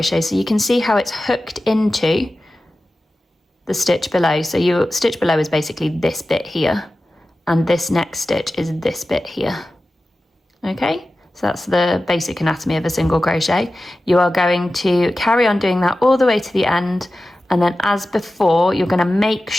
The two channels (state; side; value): normal; both; correlation 0.94